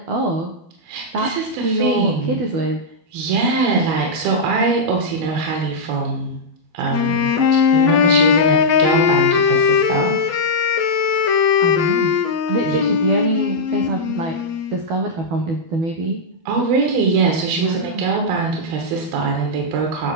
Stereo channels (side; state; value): left; late; 12 ms